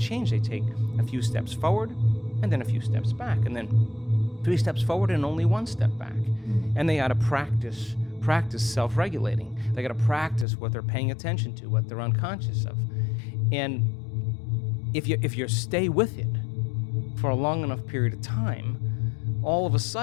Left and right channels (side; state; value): right; drops out; at 10.5 s